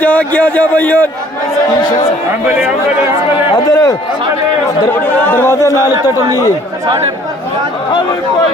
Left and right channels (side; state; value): both; normal; correlation 0.56